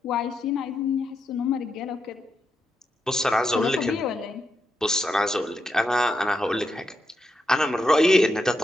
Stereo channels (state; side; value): normal; both; correlation 0.84